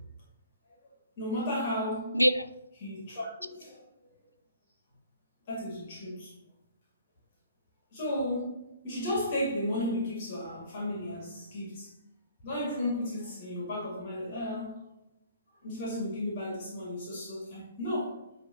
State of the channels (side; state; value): both; inverted; correlation -0.58